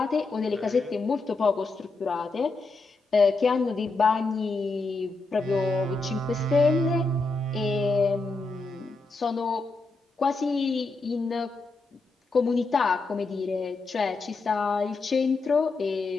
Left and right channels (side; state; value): right; quieter; 3.6 dB